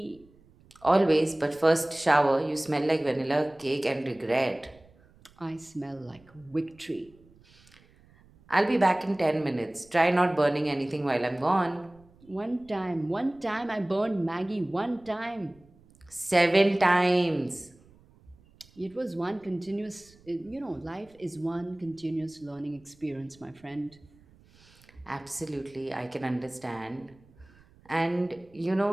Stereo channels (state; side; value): noise; right; rumble, 28 dB below the sound